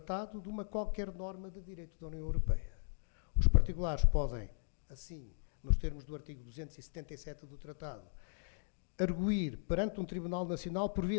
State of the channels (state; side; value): silent; right; digital silence